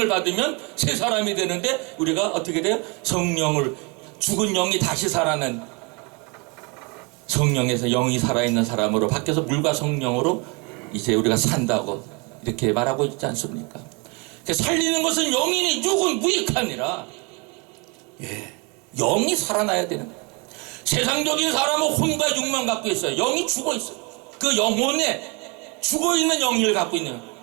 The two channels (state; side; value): quieter; left; 30.7 dB